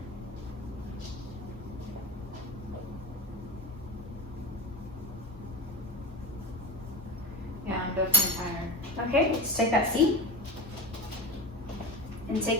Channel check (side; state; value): both; normal; correlation 0.23